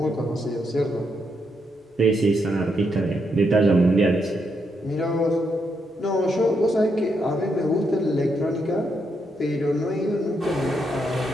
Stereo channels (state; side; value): normal; both; correlation 0.79